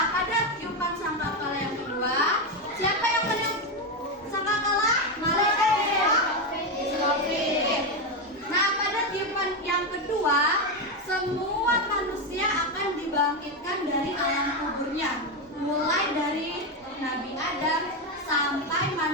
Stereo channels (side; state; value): both; normal; correlation 0.10